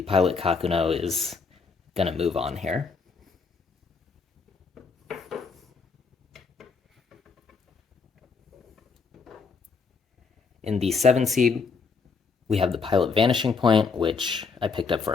Pilot Kakuno is going to move on here. In the 7 seed, we have the Pilot Vanishing Point, which I picked up for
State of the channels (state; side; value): quieter; right; 5.0 dB